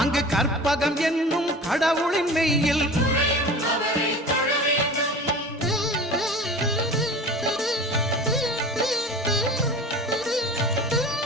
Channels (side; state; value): both; normal; correlation 0.37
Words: அங்கு கற்பகம் என்னும் கடவுளின் மெய்யில்